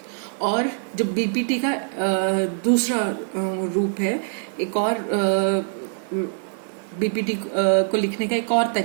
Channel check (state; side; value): silent; left; digital silence